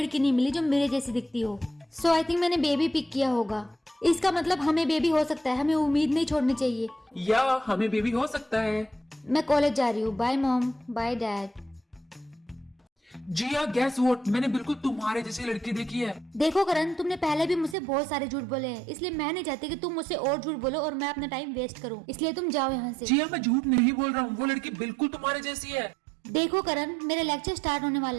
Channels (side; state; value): left; drops out; at 17.8 s